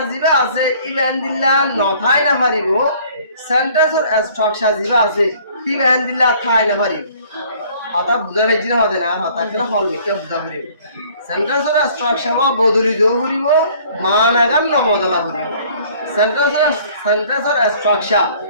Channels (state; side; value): inverted; both; correlation -0.55